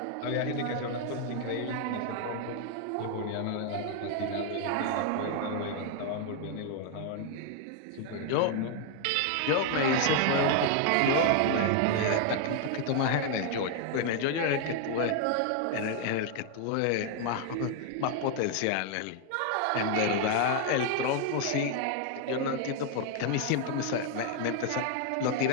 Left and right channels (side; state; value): both; different; correlation 0.00